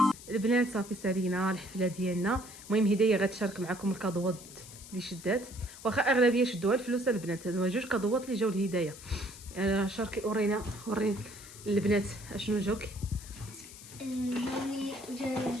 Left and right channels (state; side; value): noise; left; hiss, 16 dB below the sound